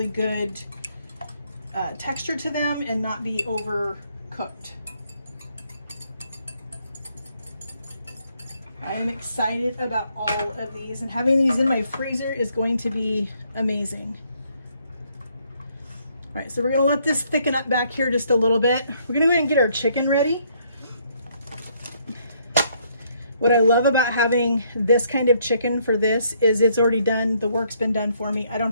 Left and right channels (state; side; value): inverted; both; correlation -0.69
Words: good texture to them and not be overcooked. I am excited about all of these, and having these in my freezer is going to be amazing. All right, so we're gonna let this thicken up back here just a little bit. We're gonna go ahead and get our chicken ready. What I love about having this kind of chicken for this is it's already done. The work's been done for me. I don't